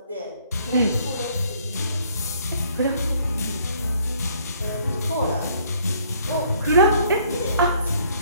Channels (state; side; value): inverted; both; correlation -0.62